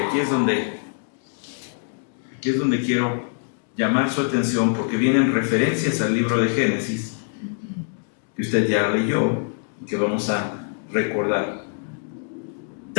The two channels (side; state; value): right; silent; digital silence